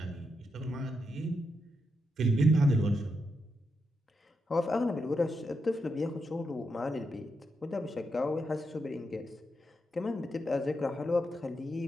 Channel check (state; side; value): normal; both; correlation 0.84